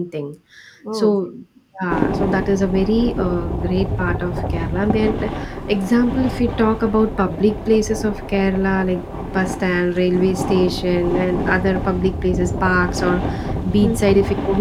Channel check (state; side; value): identical; both; correlation 1.00